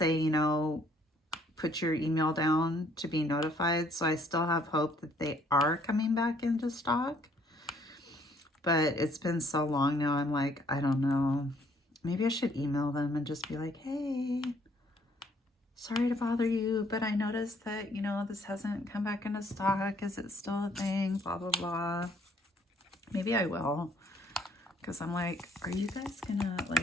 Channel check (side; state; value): both; normal; correlation 0.63